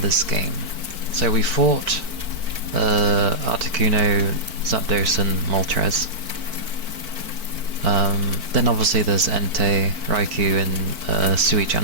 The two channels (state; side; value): late; left; 4.5 ms